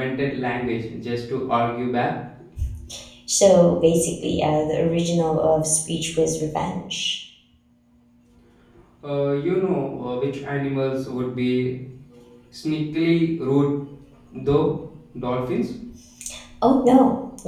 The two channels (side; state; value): both; identical; correlation 1.00